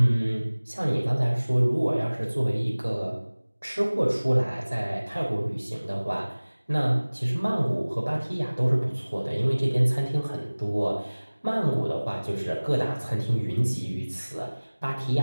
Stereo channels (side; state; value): both; inverted; correlation -1.00